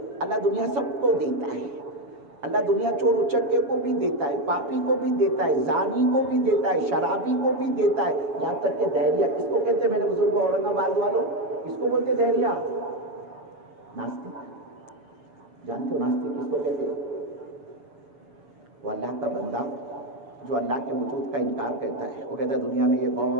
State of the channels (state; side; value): late; left; 7.2 ms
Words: اللہ دنیا سب کو دیتا ہے۔ اللہ دنیا چور اچکے کو بھی دیتا ہے، پاپی کو بھی دیتا ہے، زانی کو بھی دیتا ہے، شرابی کو بھی دیتا ہے، یہاں تک کہ دہریہ، کس کو کہتے ہیں میرے بزرگوں اورنگ آباد والوں؟ کس کو بولتے دہریہ؟ ناستک۔ جانتے ہو ناستک کس کو کہتے ہیں؟ وہ اللہ کا بندہ جو اللہ کے وجود کا انکار کرتا ہے۔ وہ کہتا ہے دنیا میں یہ